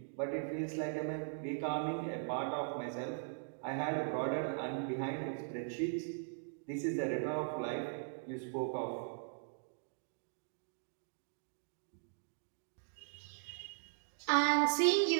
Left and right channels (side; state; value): left; silent; digital silence